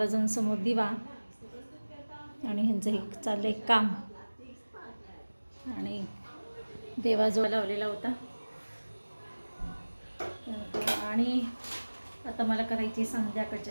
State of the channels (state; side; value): inverted; both; correlation -1.00